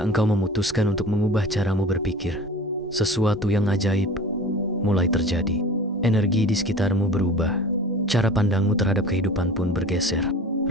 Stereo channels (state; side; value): normal; both; correlation 0.39